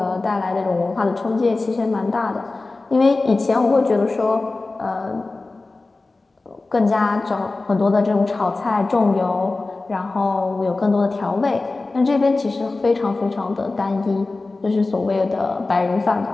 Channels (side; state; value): right; quieter; 3.4 dB